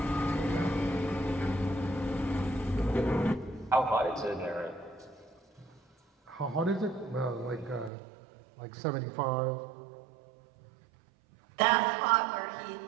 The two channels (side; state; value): left; drops out; at 7.9 s